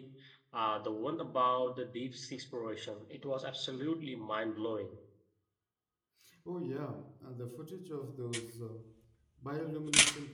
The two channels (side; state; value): both; identical; correlation 1.00